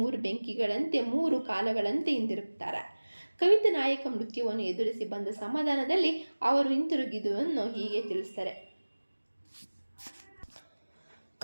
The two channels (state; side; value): inverted; both; correlation -1.00